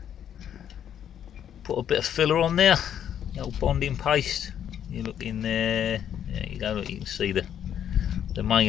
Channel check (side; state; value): right; quieter; 9.6 dB